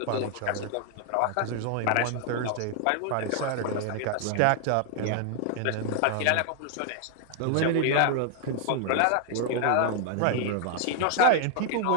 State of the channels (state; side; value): different; both; correlation 0.00